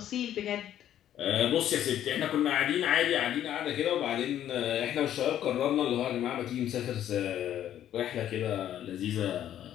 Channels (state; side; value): quieter; right; 11.2 dB